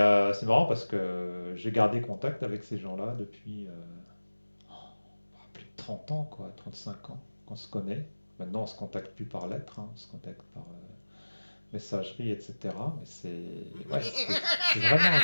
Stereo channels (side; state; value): both; inverted; correlation -1.00